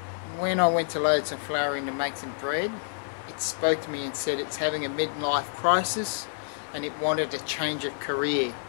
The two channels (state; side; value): silent; right; digital silence